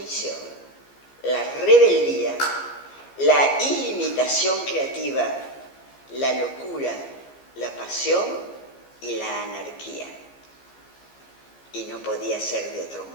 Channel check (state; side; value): late; right; 15 ms